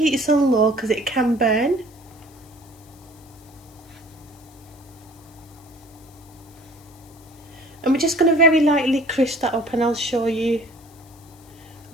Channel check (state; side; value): noise; left; hiss, 26 dB below the sound